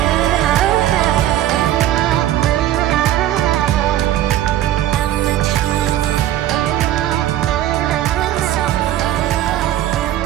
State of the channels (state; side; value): quieter; left; 12.9 dB